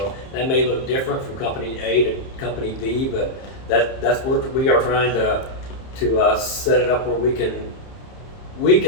that may look different from company A to company B, but that's where we are trying to set it up where we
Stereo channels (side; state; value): right; late; 30 ms